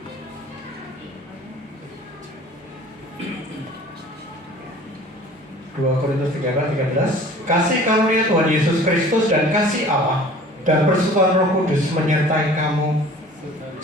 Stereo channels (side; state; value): both; normal; correlation 0.47